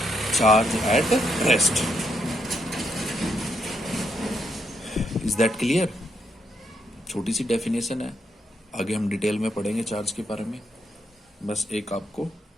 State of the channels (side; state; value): both; normal; correlation 0.78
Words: charge at rest. Is that clear? छोटी सी डेफिनेशन है, आगे हम डिटेल में पढ़ेंगे चार्ज के बारे में। बस एक आपको